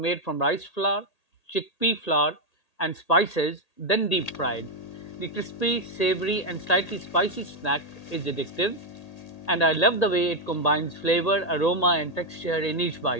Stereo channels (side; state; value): right; late; 1.8 ms